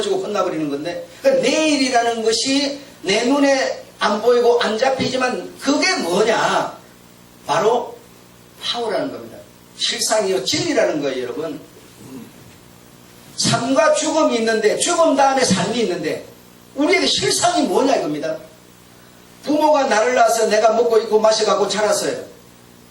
끝나버리는 건데, 그러니까 내일이라는 것이 내 눈에 안 보이고 안 잡히지만 그게 뭐냐? 바로 파워라는 겁니다. 실상이요, 진리라는 거예요, 여러분. 삶과 죽음이 있는데, 죽음 다음에 삶이 있는데, 우리에게 실상이 뭐냐 이겁니다. 부모가 나를 낳아서 내가 먹고 입고 마셔가고 자랐어요.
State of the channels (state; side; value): identical; both; correlation 1.00